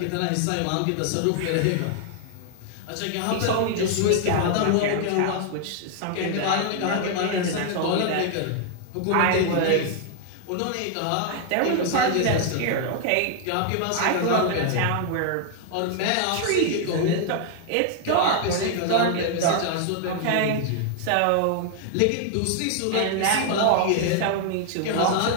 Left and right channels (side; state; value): both; different; correlation 0.00